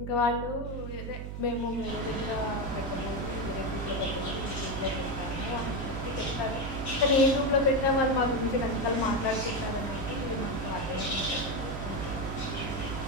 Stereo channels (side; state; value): right; noise; hum, 6 dB below the sound